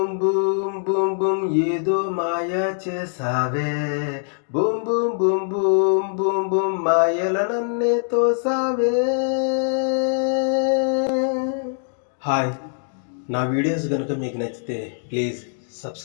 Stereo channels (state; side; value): silent; right; digital silence